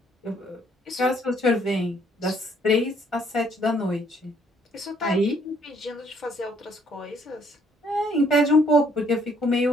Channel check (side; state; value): both; normal; correlation 0.65